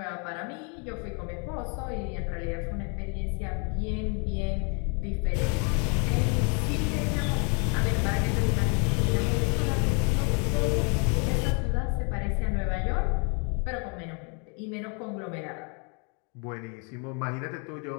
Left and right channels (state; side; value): quieter; right; 36.4 dB